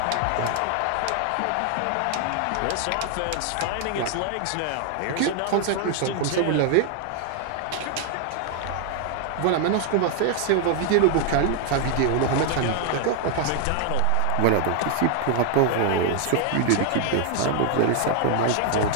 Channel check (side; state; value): both; different; correlation 0.00